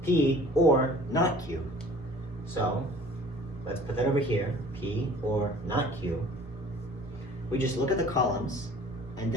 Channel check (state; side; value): normal; both; correlation 0.48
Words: P or not Q. So let's put that over here, P or not Q. We just look at the columns and